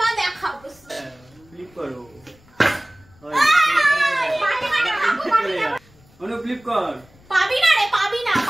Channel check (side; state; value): left; noise; rumble, 28 dB below the sound